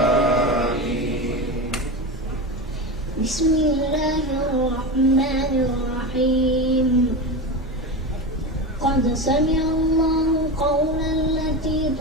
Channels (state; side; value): normal; both; correlation 0.21